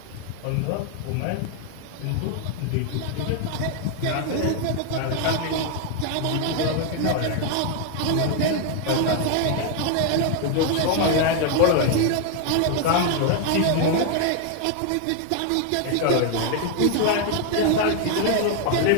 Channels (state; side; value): different; both; correlation 0.00